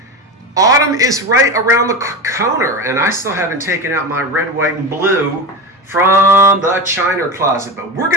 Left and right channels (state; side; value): normal; both; correlation 0.22